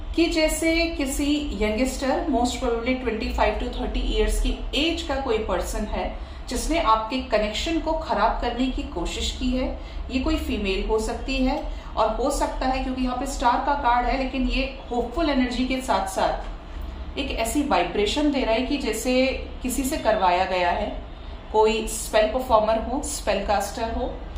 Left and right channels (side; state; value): both; identical; correlation 1.00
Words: कि जैसे किसी youngster, most probably 25 to 30 years की एज का कोई पर्सन है जिसने आपके कनेक्शन को खराब करने की कोशिश की है। ये कोई फीमेल हो सकती है, और हो सकता है, क्योंकि यहाँ पे स्टार का कार्ड है, लेकिन ये होपफुल एनर्जी के साथ साथ एक ऐसी वाइब्रेशन दे रहा है कि जैसे किसी से करवाया गया है। कोई स्पेल परफॉर्मर हो, स्पेल कास्टर हो,